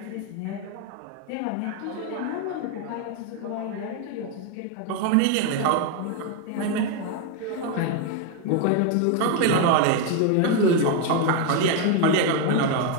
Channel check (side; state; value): both; different; correlation 0.01